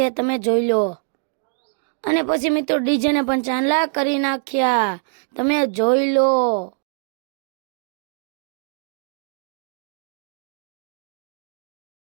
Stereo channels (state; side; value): silent; left; digital silence